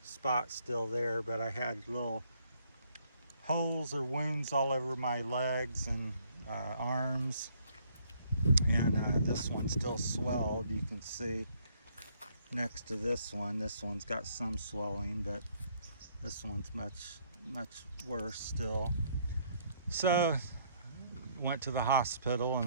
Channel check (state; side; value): inverted; both; correlation -0.66